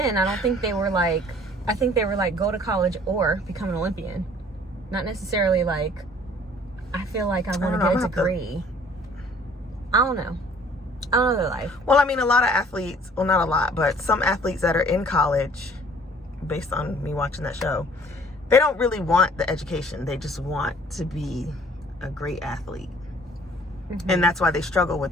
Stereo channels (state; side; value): normal; both; correlation 0.54